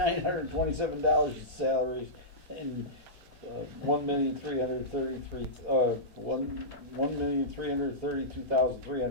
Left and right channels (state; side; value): late; left; 4.2 ms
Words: in salaries and